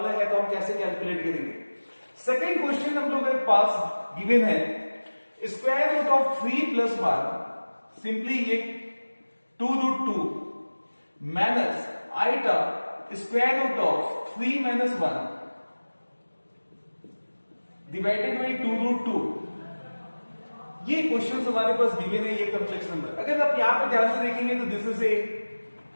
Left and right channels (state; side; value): inverted; both; correlation -1.00